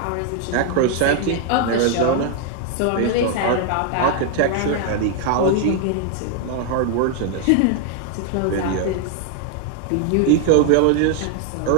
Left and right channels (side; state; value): both; different; correlation 0.00